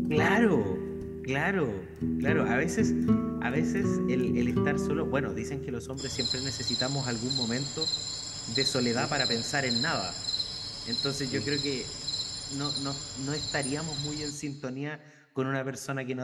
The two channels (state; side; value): identical; both; correlation 1.00